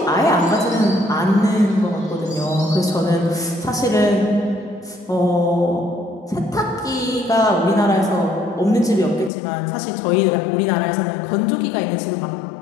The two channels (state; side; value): drops out; right; at 9.3 s